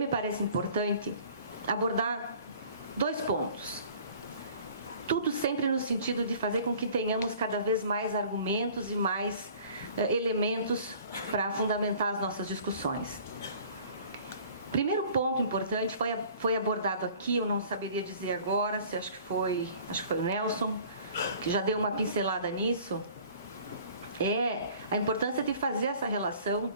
parece importante abordar 2 pontos. Tudo sempre no sentido de fazer com que tenhamos cada vez mais argumentos e mais elementos para fundamentar as nossas discussões. Primeiro ponto importante foi abordado aqui, eu não saberia dizer agora, acho que foi o Nelson, que já deu uma pincelada nisso, é a importância de fazer essa relação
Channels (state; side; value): inverted; both; correlation -0.50